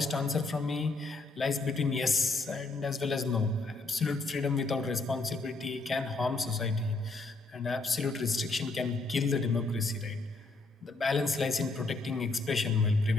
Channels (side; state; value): right; quieter; 3.5 dB